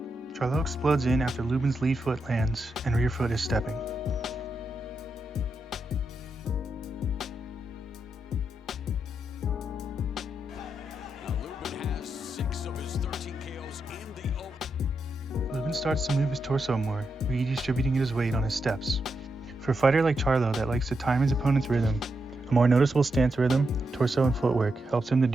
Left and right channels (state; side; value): normal; both; correlation 0.85